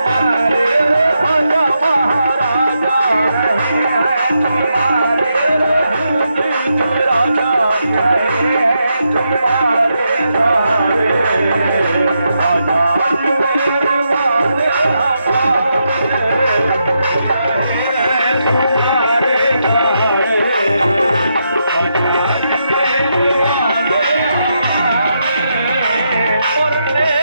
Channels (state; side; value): inverted; both; correlation -0.82